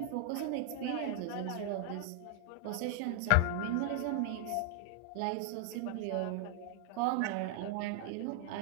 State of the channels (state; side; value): different; both; correlation 0.00